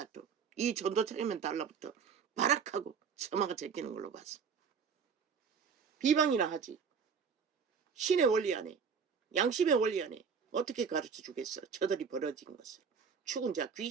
이 전도차이면 달라붙어 발악하고 처마가 제끼는 걸로 봤어. 비방이나 하지. 신의 원리 안에 양심의 원리 안에 어떻게 가르쳐 주겠어. 저들이 벌어진 것을. 죽은 자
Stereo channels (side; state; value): left; quieter; 6.3 dB